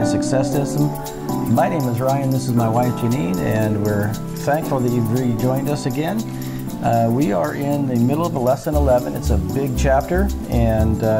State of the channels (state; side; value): identical; both; correlation 1.00